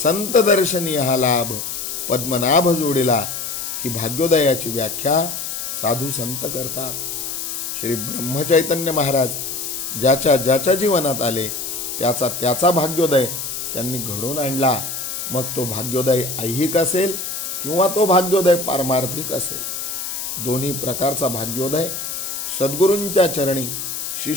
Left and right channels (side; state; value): left; noise; hiss, 5 dB below the sound